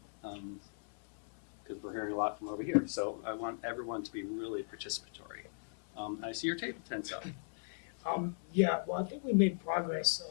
because we're hearing a lot from over here. So I want everyone to be really participatory. I see your table tense up. Yeah, well, I think we made progress,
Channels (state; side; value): silent; right; 53 dB below the other